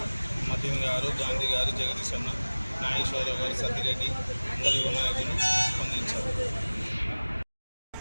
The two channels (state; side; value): inverted; both; correlation -1.00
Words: మతిన్ గారు, గాంధీ గారు, జగదీష్ అన్న, నాగేశ్వరరావు గారు, సత్యరెడ్డి, అందరు యువ నాయకులు స్పందించారు.